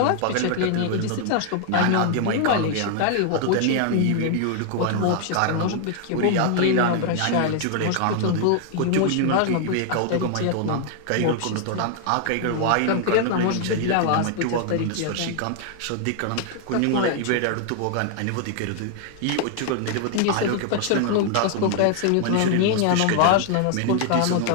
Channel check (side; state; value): both; different; correlation 0.00